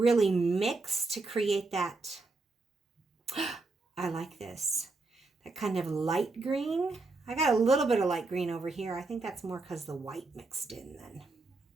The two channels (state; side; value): quieter; left; 3.5 dB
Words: mix to create that... I like this. That kind of light green. I got a little bit of light green over here. I think that's more because the white mixed in then.